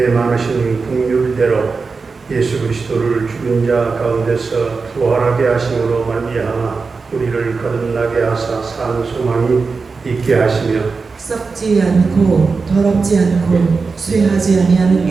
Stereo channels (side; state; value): left; quieter; 4.5 dB